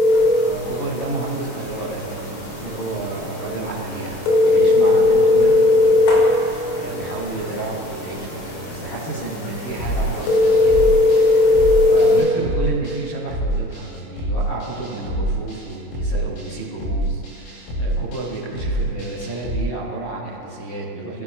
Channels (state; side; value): late; right; 25 ms